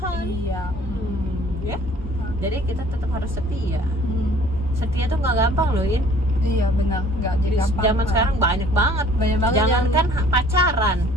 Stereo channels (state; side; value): normal; both; correlation 0.53